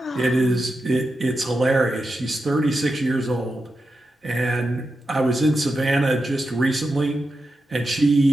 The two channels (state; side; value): normal; both; correlation 0.89